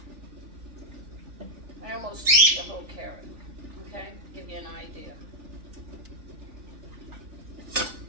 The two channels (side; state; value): left; late; 3.4 ms